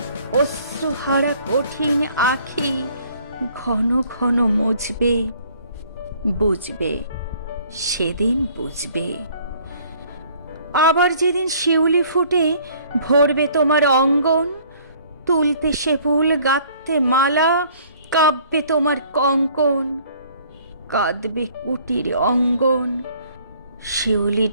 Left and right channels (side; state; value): both; inverted; correlation -0.57